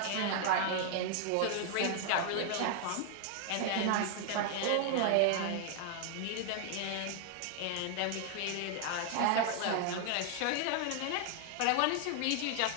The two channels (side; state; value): both; different; correlation 0.00